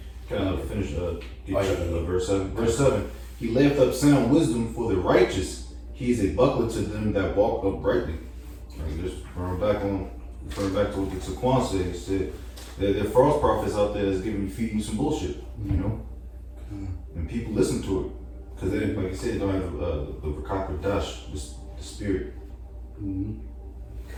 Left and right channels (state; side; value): identical; both; correlation 1.00